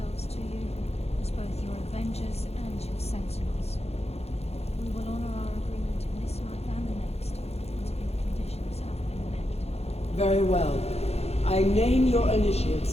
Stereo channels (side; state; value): right; late; 0.30 ms